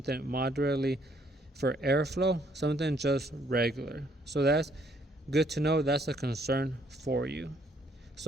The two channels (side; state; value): both; normal; correlation 0.67